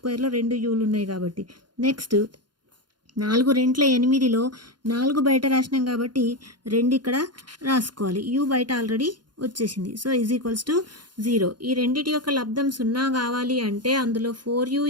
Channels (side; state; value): left; late; 0.71 ms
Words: 2 uలు ఉన్నాయి కాబట్టి. నెక్స్ట్ 4 2 8లో 4 బయట రాసినాం కాబట్టి 2 ఇక్కడ రాసుకోవాలి. u బయట ఆల్రెడీ వచ్చేసింది. So is equals to 0. ఈ రెండిటి యొక్క లబ్ధం 0 కావాలి అంటే అందులో 4u